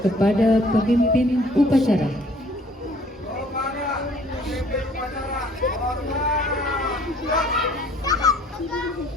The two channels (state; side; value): normal; both; correlation 0.57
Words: kepada pemimpin upacara.